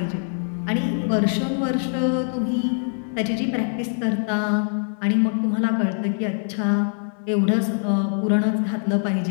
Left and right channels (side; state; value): right; silent; digital silence